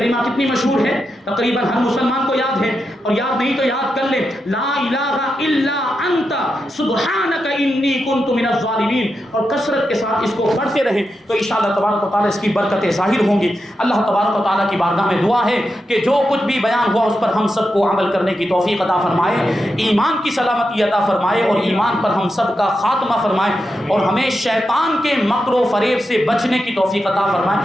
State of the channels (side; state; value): both; normal; correlation 0.87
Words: کتنی مشہور ہے, تقریباً ہر مسلمان کو یاد ہے, اور یاد نہیں تو یاد کر لے لا الہ الا انت سبحانک انی کنت من الظالمین, اور کثرت کے ساتھ اس کو پڑھتے رہیں تو انشاءاللہ تبارک و تعالیٰ اس کی برکتیں ظاہر ہوں گی. اللہ تبارک و تعالیٰ کی بارگاہ میں دعا ہے کہ جو کچھ بھی بیان ہوا اس پر ہم سب کو عمل کرنے کی توفیق عطا فرمائے, ایمان کی سلامتی عطا فرمائے, اور ایمان پر ہم سب کا خاتمہ فرمائے, اور ہمیں شیطان کے مکر و فریب سے بچنے کی توفیق عطا